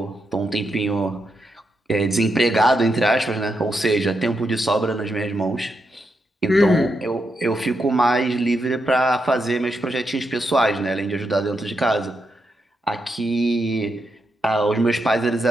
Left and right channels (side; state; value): both; normal; correlation 0.83